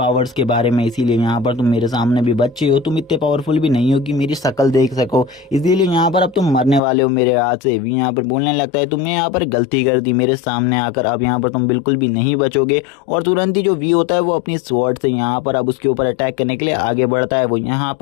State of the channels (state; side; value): drops out; right; at 6.8 s